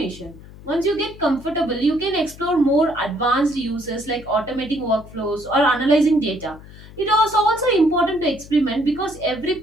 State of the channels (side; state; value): left; noise; hum, 18 dB below the sound